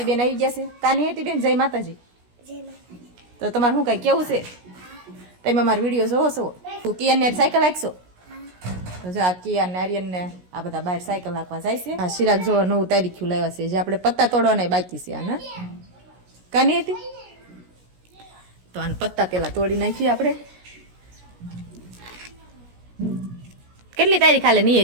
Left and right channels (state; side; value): late; left; 17 ms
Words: આવી ગયા છે. કા નિયતિબેન જય માતાજી. જય માતાજી. તો તમારે શું કઈ કેવું છે? તમે અમારો વિડીયો જોવો છો? કિયાનને સાયકલ હાંકશો? તો જો આ કિયાન ને આર્યન ને આ બધા બહાર સાયકલ હાંકવા જાય છે. આ ચિરાગ જો 9 તારીખ લાવ્યા છે, જે આપણે પત્તા તોડવાના બાકી છે. આના કાની હતી તો આને પત્તા પેલા તોડી નાખીએ આપણે. કેટલી તારીખ હાલે